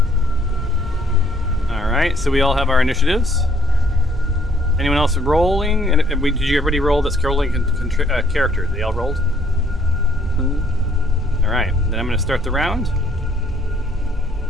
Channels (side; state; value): both; normal; correlation 0.66